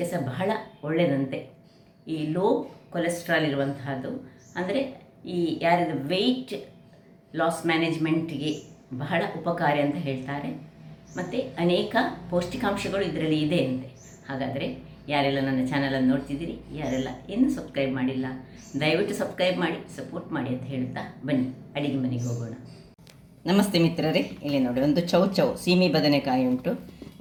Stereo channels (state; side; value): identical; both; correlation 1.00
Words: ಸಹ ಬಹಳ ಒಳ್ಳೆಯದಂತೆ. ಈ ಲೋ ಕೊಲೆಸ್ಟ್ರಾಲ್ ಇರುವಂತಹದ್ದು, ಅಂದರೆ ಈ ಯಾರಿದ ವೆಯ್ಟ್ ಲಾಸ್ ಮ್ಯಾನೇಜ್ಮೆಂಟ್ಗೆ ಬಹಳ ಉಪಕಾರಿ ಅಂತ ಹೇಳ್ತಾರೆ. ಮತ್ತು ಅನೇಕ ಪೌಷ್ಟಿಕಾಂಶಗಳು ಇದರಲ್ಲಿ ಇದೆ ಅಂತೆ. ಹಾಗಾದರೆ ಯಾರೆಲ್ಲ ನನ್ನ ಚಾನಲನ್ನು ನೋಡ್ತಿದ್ದೀರಿ, ಯಾರೆಲ್ಲ ಇನ್ನೂ ಸಬ್ಸ್ಕ್ರೈಬ್ ಮಾಡಿಲ್ಲ, ದಯವಿಟ್ಟು ಸಬ್ಸ್ಕ್ರೈಬ್ ಮಾಡಿ ಸಪೋರ್ಟ್ ಮಾಡಿ ಅಂತ ಹೇಳುತ್ತಾ ಬನ್ನಿ ಅಡಿಗೆ ಮನೆಗೆ ಹೋಗೋಣ. ನಮಸ್ತೆ ಮಿತ್ರರೇ, ಇಲ್ಲಿ ನೋಡಿ ಒಂದು ಚೌ ಸೀಮೆ ಬದನೆಕಾಯಿ ಉಂಟು,